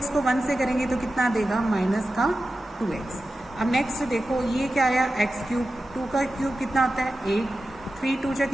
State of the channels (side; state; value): both; normal; correlation 0.93